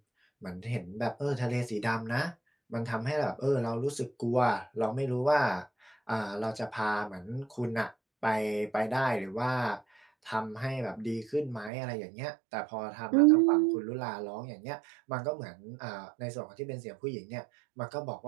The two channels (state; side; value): drops out; left; at 11.7 s